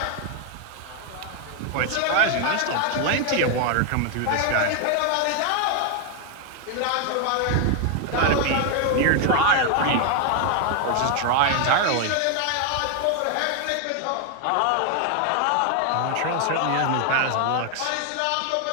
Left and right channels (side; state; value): both; different; correlation 0.00